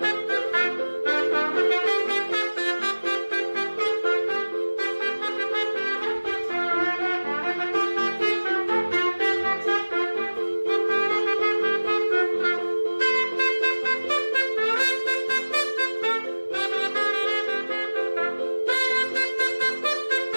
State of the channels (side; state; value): both; inverted; correlation -1.00